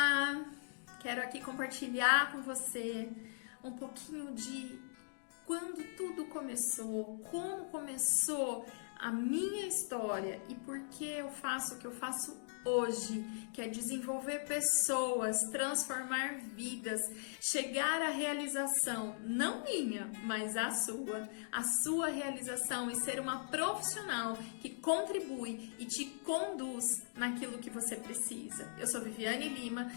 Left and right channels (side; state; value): right; silent; digital silence